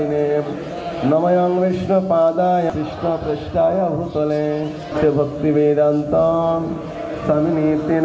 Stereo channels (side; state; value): both; identical; correlation 1.00